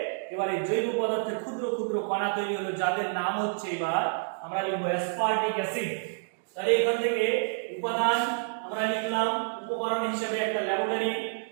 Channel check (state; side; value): silent; left; digital silence